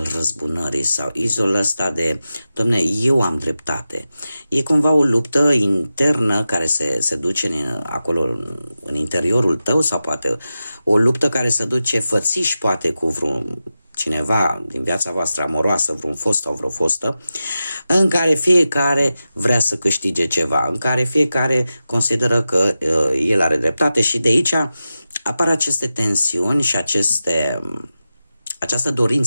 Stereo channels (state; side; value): inverted; both; correlation -0.92